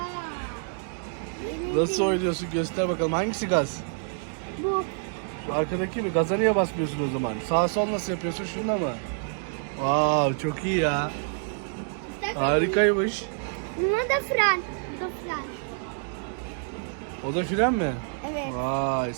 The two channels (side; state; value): left; silent; 60 dB below the other